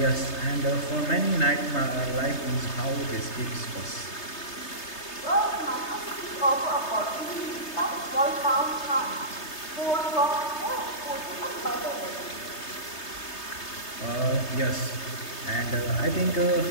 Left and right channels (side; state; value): right; late; 3.3 ms